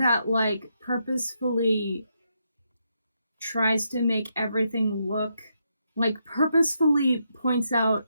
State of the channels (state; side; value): inverted; both; correlation -0.80